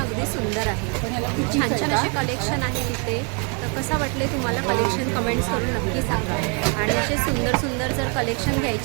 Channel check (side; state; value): left; quieter; 36.7 dB